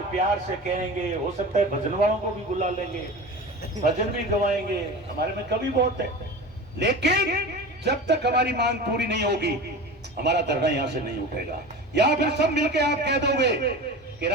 प्यार से कहेंगे। हो सकता है भजन वालों को भी बुला लेंगे, भजन भी गवाएंगे, हमारे में कभी बहुत है। लेकिन जब तक हमारी मांग पूरी नहीं होगी हमारा धरना यहां से नहीं उठेगा। या फिर सब मिलके आप कह दोगे कि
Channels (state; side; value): normal; both; correlation 0.32